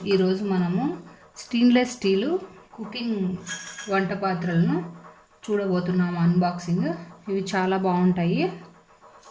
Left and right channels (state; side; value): identical; both; correlation 1.00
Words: ఈరోజు మనము స్టెయిన్లెస్ స్టీలు కుకింగ్ వంట పాత్రలను చూడబోతున్నాము అన్బాక్సింగ్. ఇవి చాలా బాగుంటాయి,